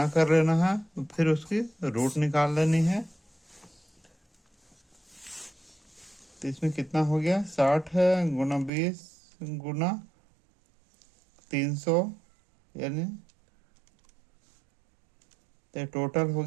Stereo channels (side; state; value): left; drops out; at 8.7 s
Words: कर लेना है, फिर उसकी रूट निकाल लेनी है। तो इसमें कितना हो गया, 60 गुना 20 गुना 300, यानी तो टोटल हो